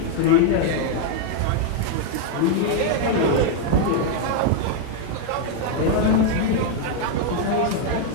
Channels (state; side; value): different; both; correlation 0.00